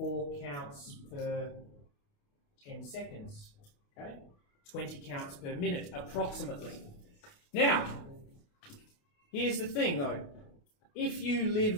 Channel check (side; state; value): right; late; 28 ms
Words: counts per 10 seconds. Okay? 20 counts per minute, approximately. Now, here's the thing though. If you